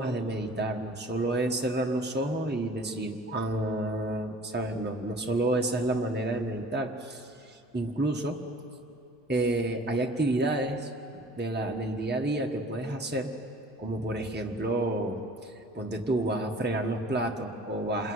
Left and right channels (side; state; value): both; normal; correlation 0.49